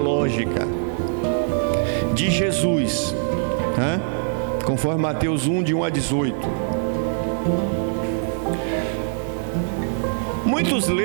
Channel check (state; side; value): silent; left; digital silence